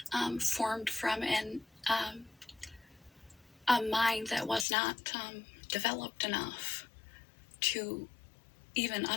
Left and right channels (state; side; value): drops out; right; at 4.7 s